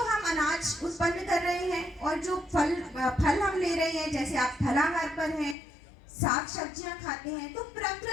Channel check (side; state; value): right; drops out; at 5.6 s